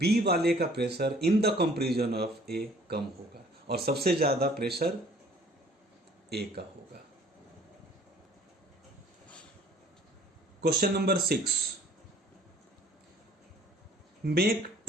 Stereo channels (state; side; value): normal; both; correlation 0.56